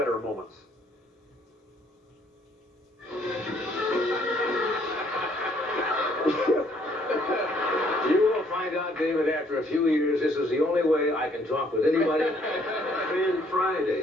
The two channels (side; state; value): both; normal; correlation 0.65